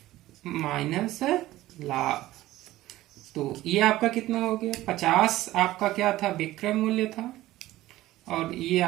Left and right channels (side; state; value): left; quieter; 16.0 dB